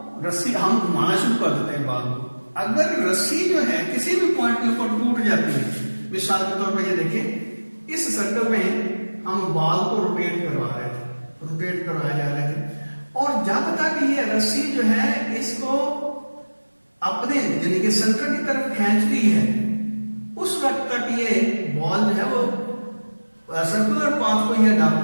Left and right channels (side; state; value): both; inverted; correlation -1.00